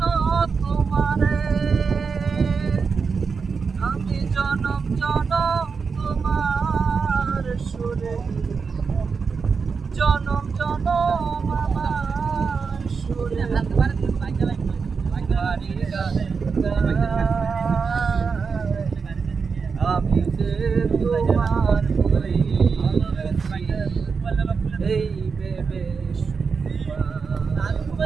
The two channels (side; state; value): left; quieter; 5.3 dB